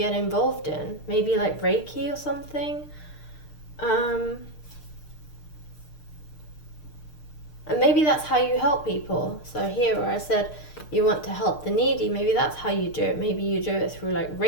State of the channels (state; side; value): late; right; 6.6 ms